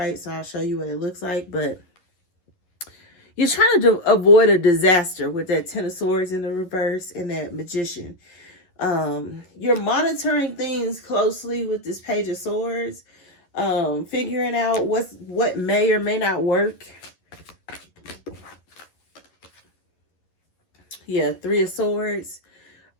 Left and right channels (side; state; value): right; late; 11 ms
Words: so I'll show you what it looks like. But you're trying to avoid a disaster with that Ten of Swords in the reverse and that Magician. You're monitoring things closely with this Page of Swords, figuring out what may or may not work. Yeah, Three of Swords.